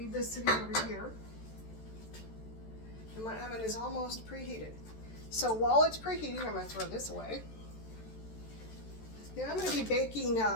this sitting over here. And my oven is almost preheated. So while it's preheating, I'm going to throw this away. Now I'm going to be baking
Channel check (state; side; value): late; right; 14 ms